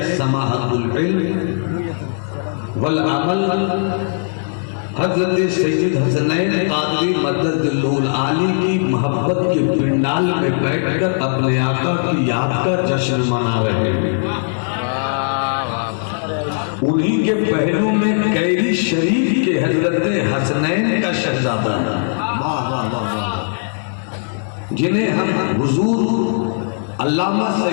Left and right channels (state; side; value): silent; right; digital silence